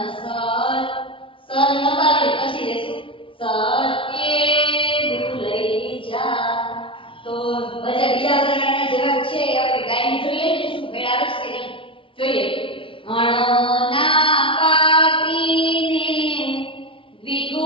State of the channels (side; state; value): right; late; 0.25 ms